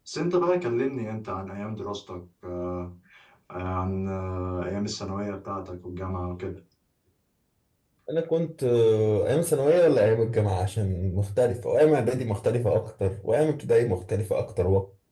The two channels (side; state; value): both; identical; correlation 1.00